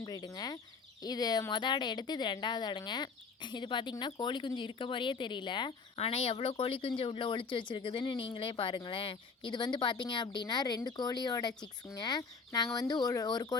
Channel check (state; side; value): quieter; right; 5.0 dB